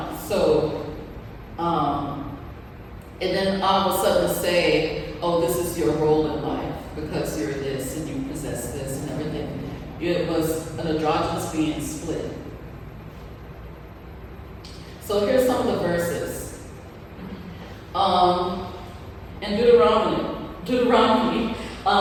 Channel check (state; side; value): identical; both; correlation 1.00